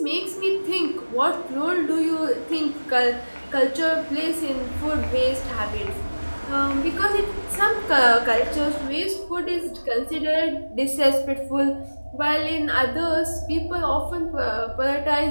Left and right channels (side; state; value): both; inverted; correlation -1.00